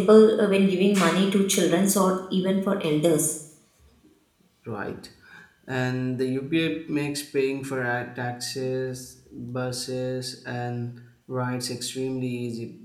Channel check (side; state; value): both; identical; correlation 1.00